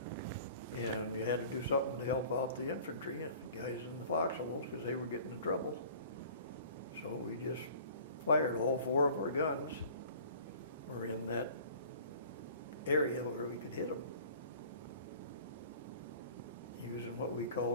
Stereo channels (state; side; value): inverted; both; correlation -0.47